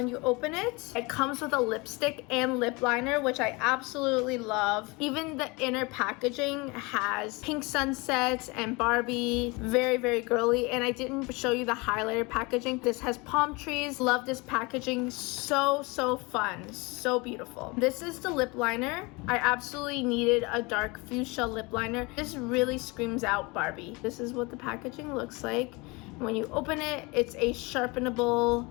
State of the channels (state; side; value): quieter; right; 26.2 dB